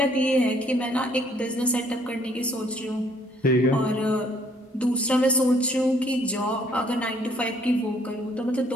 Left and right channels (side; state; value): both; normal; correlation 0.63